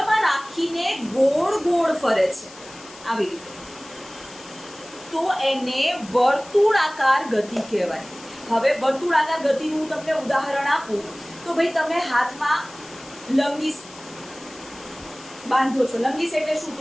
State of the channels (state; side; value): noise; left; hiss, 19 dB below the sound